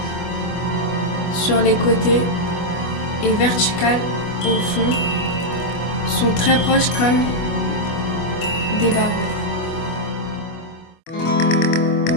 sur les côtés et verticales au fond sont très proches comme des barreaux.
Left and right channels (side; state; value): right; late; 25 ms